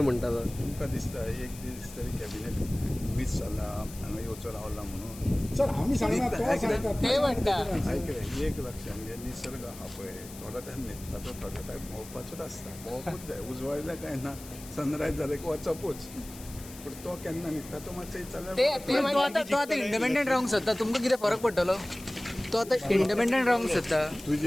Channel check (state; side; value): noise; left; hiss, 16 dB below the sound